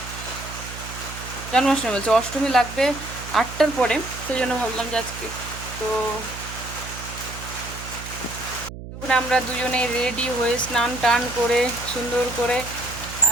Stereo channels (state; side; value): noise; right; hum, 11 dB below the sound